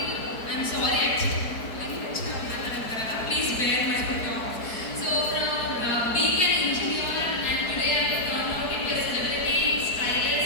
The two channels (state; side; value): late; right; 4.7 ms